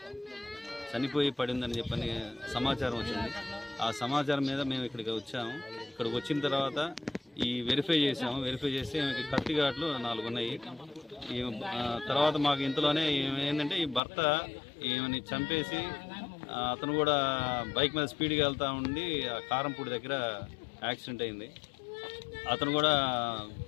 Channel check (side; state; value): right; drops out; at 14.0 s